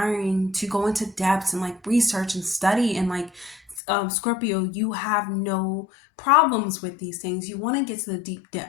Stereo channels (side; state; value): right; drops out; at 3.8 s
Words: to go into depths and like research and study, and like Scorpio, you have no problems with these things. You want to get to the deep